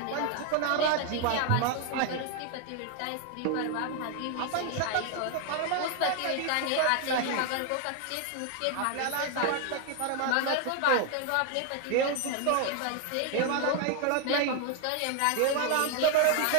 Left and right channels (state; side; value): different; both; correlation 0.01